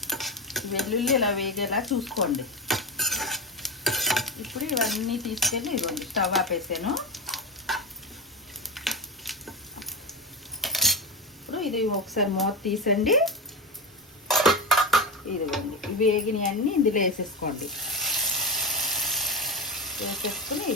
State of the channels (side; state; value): both; normal; correlation 0.19